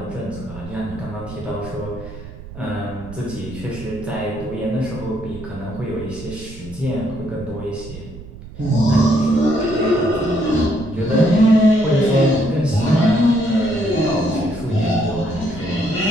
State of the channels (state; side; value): noise; right; rumble, 14 dB below the sound